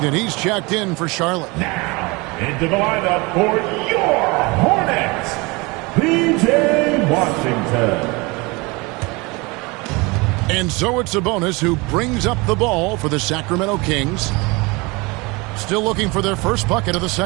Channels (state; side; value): quieter; left; 25.7 dB